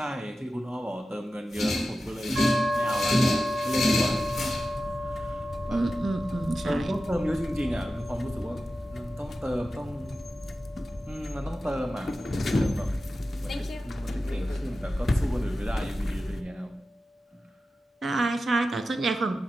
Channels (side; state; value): both; normal; correlation 0.93